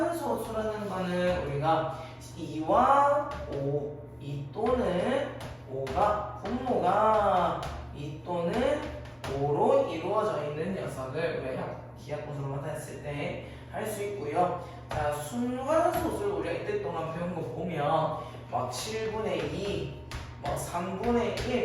거는 우리가 2와 5, 2 또는 5가 분모가 2 또는 5로 이루어져 있는 녀석을 우리가 기하분수로 나타냈을 때 할 수 있고요. 자, 순환소수를 우리가 이때 동안 배운 거 보면 막 7분의 2, 뭐 3분의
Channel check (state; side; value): identical; both; correlation 1.00